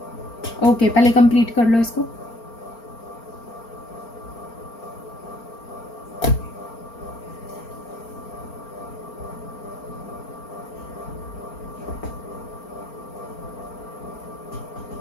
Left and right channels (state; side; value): late; right; 4.4 ms